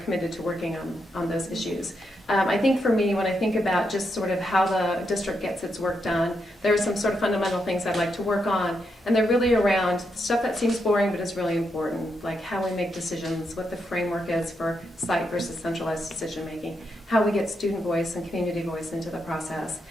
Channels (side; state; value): both; normal; correlation 0.82